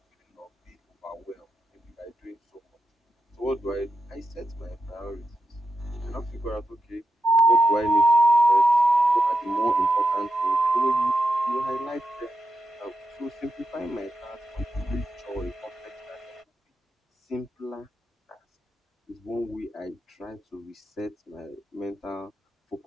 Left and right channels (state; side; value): normal; both; correlation 0.86